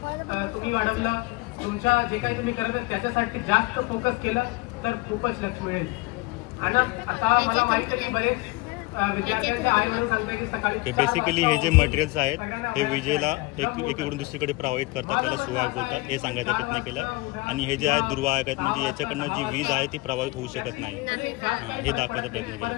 तुम्ही वाढवला, तुमच्या जे काही तुम्ही करत त्याच्यासाठी जास्त फोकस केलं तर खूपच लक्ष मिळेल. आणि आता मला माहिती आहे की बरेच बेसिकली हे जे मटेरियल्स आहेत हे विजेला एकीकडून दुसरीकडे प्रवाहित करतात, त्याला सुवाहक बोलतात. हे सांगायचा प्रयत्न केला. आणि हे जे आहेत दुर्वाहक आहेत, म्हणजे याच्याकडनं जी वीज आहे ती प्रवाहित होऊ शकत नाही. हे दाखवायचा प्रयत्न केला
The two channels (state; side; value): quieter; right; 22.6 dB